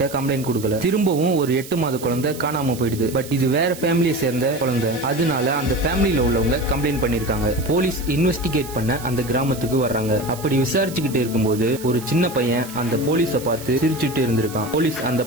கம்ப்ளைண்ட் கொடுக்கல. திரும்பவும் ஒரு 8 மாத குழந்தை காணாம போயிடுது. பட் இது வேற ஃபேமிலியை சேர்ந்த குழந்தை. அதனால அந்த ஃபேமிலியில உள்ளவங்க கம்ப்ளைண்ட் பண்ணிருக்காங்க. போலீஸ் இன்வெஸ்டிகேட் பண்ண அந்த கிராமத்துக்கு வர்றாங்க. அப்படி விசாரிச்சுக்கிட்டு இருக்கும்போது ஒரு சின்ன பையன் அந்த போலீஸ பார்த்து சிரிச்சுட்டு இருந்திருக்கான். போலீஸ் அந்த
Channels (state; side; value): noise; right; hiss, 15 dB below the sound